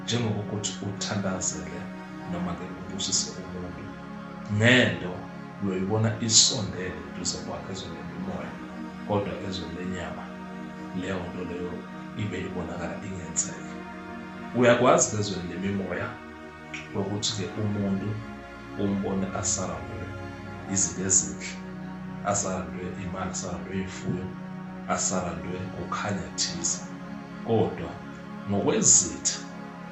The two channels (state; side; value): identical; both; correlation 1.00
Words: njengokuthi uthandazele noma ke ubusise umuntu ngento uyoyibona isondele duze kwakhe ezweni lemimoya, kodwa ezweni lenyama leyo nto leyo ibe ibonakala ingenzeki. Uyakwazi ezweni lemimoya ukuthi ke umuntu umbone asarandwe izinto ezinhle, asarandwe imali, asarandwe ifuyo, asarandwe ukukhanya thize, kodwa ngokwezitha